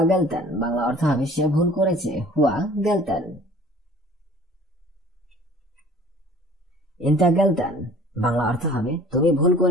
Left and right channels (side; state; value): both; normal; correlation 0.49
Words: গেলতান, বাংলা অর্থ হবে সে ভুল করেছে, হুয়া গেলতান। ইনতা গেলতান, বাংলা অর্থ হবে তুমি ভুল